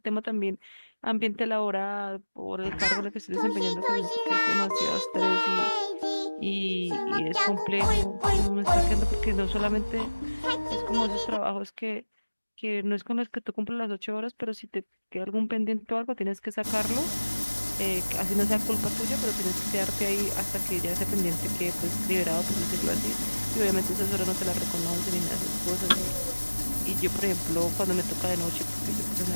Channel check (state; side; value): inverted; both; correlation -1.00